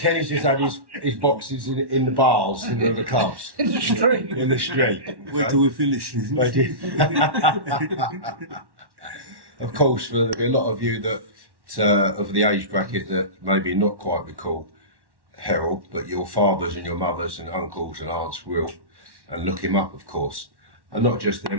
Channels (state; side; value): late; left; 1.1 ms